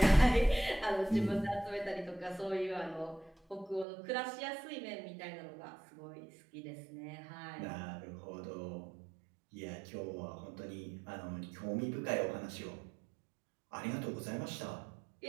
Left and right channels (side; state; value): left; drops out; at 3.9 s